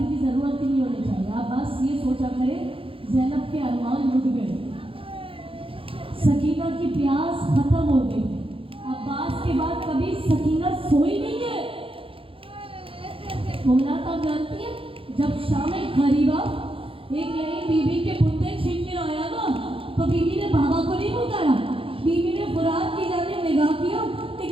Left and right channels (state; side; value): late; left; 0.26 ms